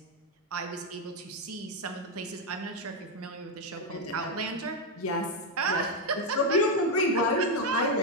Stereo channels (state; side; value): normal; both; correlation 0.04